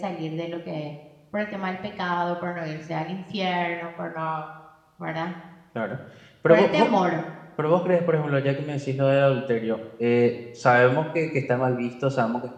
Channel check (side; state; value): both; identical; correlation 1.00